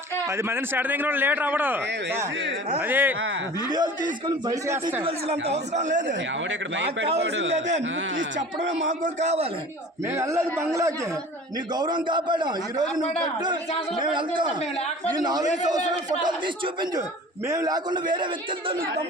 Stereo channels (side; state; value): both; normal; correlation 0.42